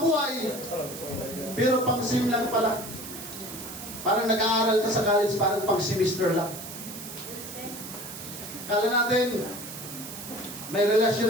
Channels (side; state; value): right; noise; hiss, 11 dB below the sound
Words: pero pang sim lang pala. Parang nag-aaral ka sa college, parang pang semester lang. Akala natin, may